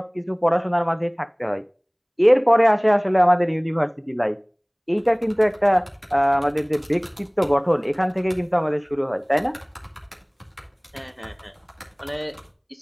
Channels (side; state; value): both; identical; correlation 1.00